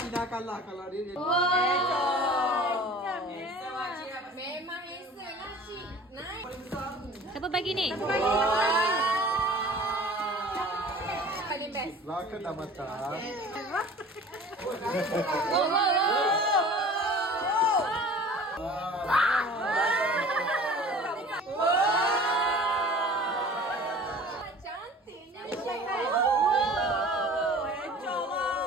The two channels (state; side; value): normal; both; correlation 0.44